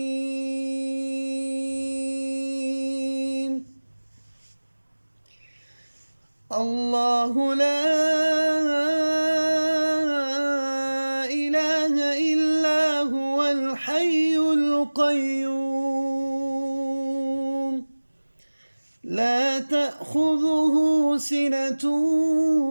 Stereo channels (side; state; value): both; inverted; correlation -1.00